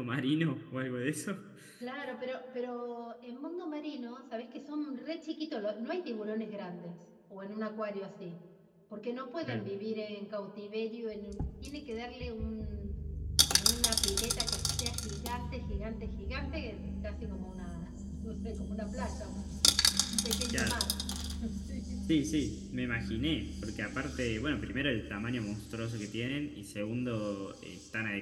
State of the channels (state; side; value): identical; both; correlation 1.00